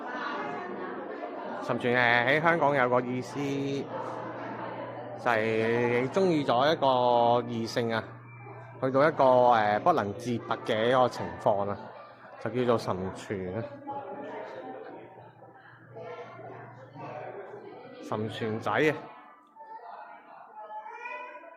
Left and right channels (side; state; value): both; identical; correlation 1.00